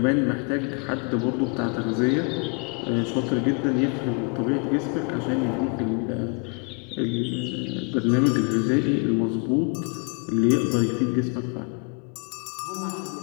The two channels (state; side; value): quieter; right; 35.4 dB